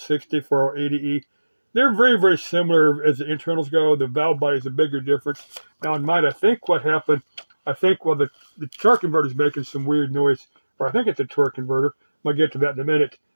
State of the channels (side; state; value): both; inverted; correlation -1.00